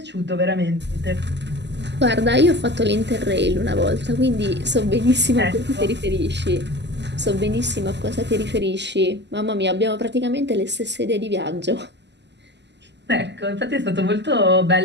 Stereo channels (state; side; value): late; left; 0.51 ms